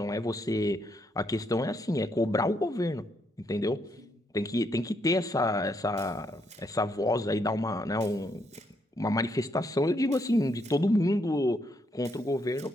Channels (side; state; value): both; normal; correlation 0.75